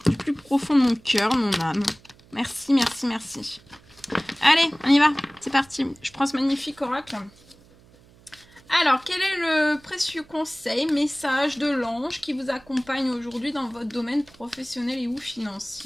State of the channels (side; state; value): right; noise; hum, 27 dB below the sound